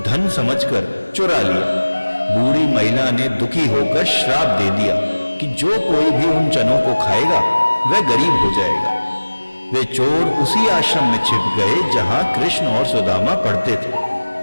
धन समझकर चुरा लिया। बूढ़ी महिला ने दुखी होकर श्राप दे दिया कि जो कोई भी उन चनों को खाएगा वह गरीब हो जाएगा। वे चोर उसी आश्रम में छिप गए जहां कृष्ण और सुदामा पढ़ते थे।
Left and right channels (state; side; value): inverted; both; correlation -1.00